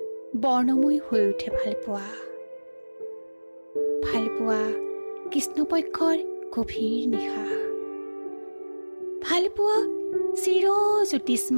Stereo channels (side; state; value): both; inverted; correlation -1.00